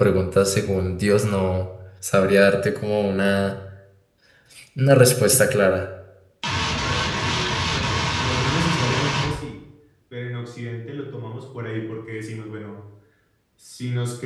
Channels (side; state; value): both; identical; correlation 1.00